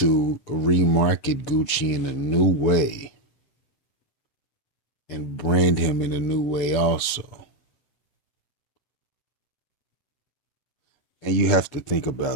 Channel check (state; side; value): late; right; 7.0 ms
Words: remarket Gucci in a new way and brand him in a new way also. And you have to think